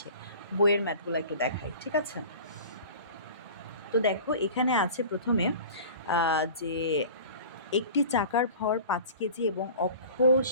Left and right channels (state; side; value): inverted; both; correlation -0.40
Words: বইয়ের ম্যাথগুলো একটু দেখাই, ঠিক আছে? তো দেখো এখানে আছে প্রথমে যে একটি চাকার ভর 5 কেজি এবং অক্ষ